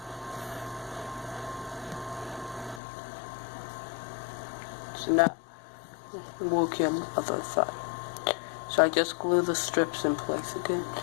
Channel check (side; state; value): right; drops out; at 2.8 s